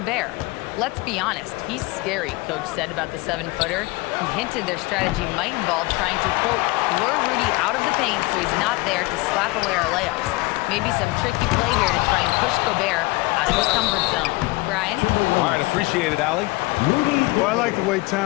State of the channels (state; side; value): quieter; right; 23.0 dB